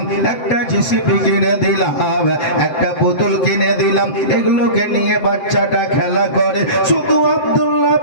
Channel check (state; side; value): late; right; 7.7 ms